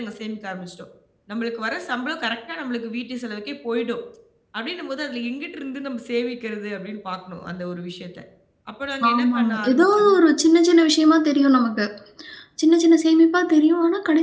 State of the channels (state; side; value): identical; both; correlation 1.00